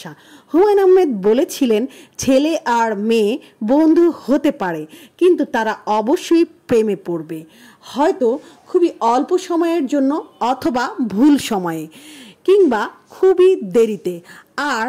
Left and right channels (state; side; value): identical; both; correlation 1.00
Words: হুমায়ুন আহমেদ বলেছিলেন ছেলে আর মেয়ে বন্ধু হতে পারে, কিন্তু তারা অবশ্যই প্রেমে পড়বে, হয়তো খুবই অল্প সময়ের জন্য অথবা ভুল সময়ে, কিংবা খুবই দেরিতে, আর